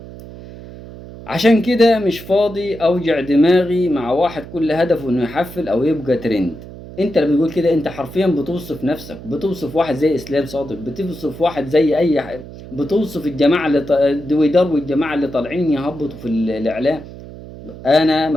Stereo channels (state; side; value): noise; right; hum, 15 dB below the sound